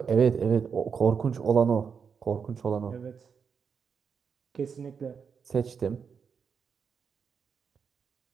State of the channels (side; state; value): left; quieter; 6.3 dB